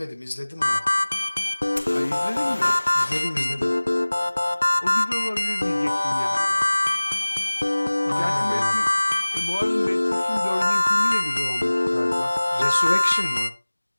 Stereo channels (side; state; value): both; inverted; correlation -1.00